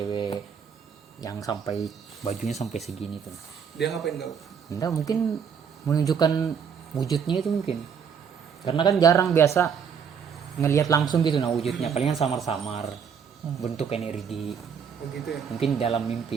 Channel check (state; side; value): quieter; left; 7.0 dB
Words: yang sampai bajunya sampai segini tuh. dia ngapain kau? Enggak, mungkin menunjukkan wujudnya itu mungkin. Karena kan jarang biasa ngelihat langsung gitu nah wujudnya, palingan samar-samar bentuk energi. Begitu ya. Mungkin dalam